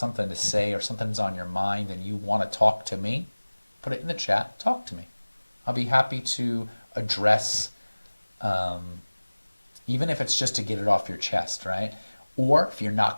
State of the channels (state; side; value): inverted; both; correlation -1.00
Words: to say or something's on your mind and you want to talk to me, put it in the chat, talk to me. I'll be happy to address, even if it's just to get it off your chest, right? Or if you're